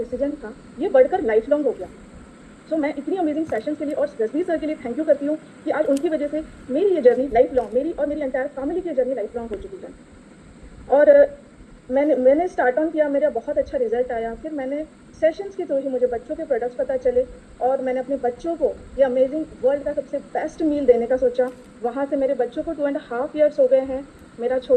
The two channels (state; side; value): identical; both; correlation 1.00